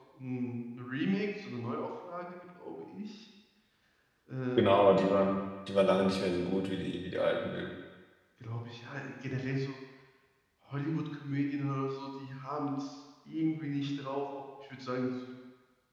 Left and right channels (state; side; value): identical; both; correlation 1.00